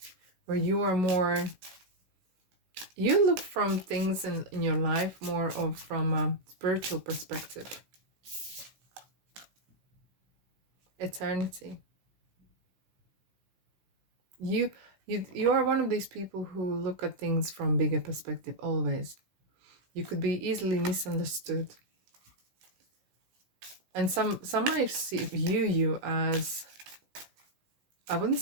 where you are more, you look from things in your life more of from a spiritual perspective. Eternity. You are one of these people who look at things from bigger perspective always. You could be easily misunderstood. And some might view you as, I wouldn't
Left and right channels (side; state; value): left; late; 16 ms